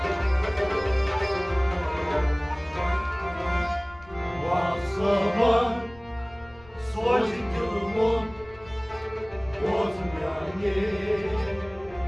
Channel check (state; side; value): noise; left; rumble, 23 dB below the sound